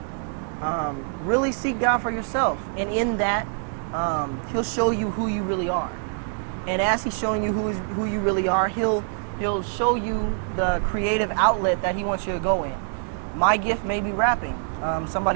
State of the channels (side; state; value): left; silent; 62 dB below the other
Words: really seek God for yourself. And in that, he'll show you who you really are. And as he's showing you who you really are, he'll show you the creative outlet that he wants you to go in. My gift may be rapping.